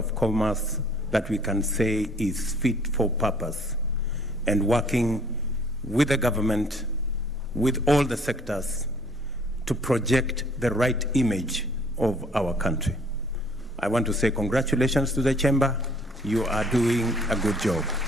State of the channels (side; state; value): both; normal; correlation 0.58